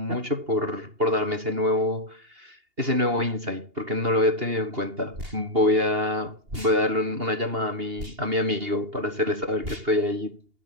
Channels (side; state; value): left; late; 2.8 ms